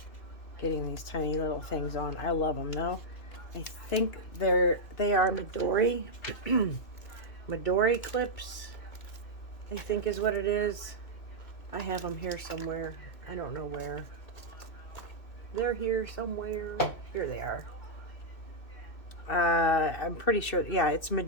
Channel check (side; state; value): right; late; 2.6 ms